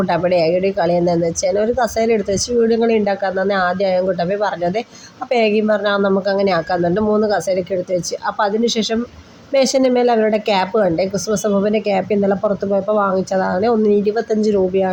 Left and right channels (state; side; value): identical; both; correlation 1.00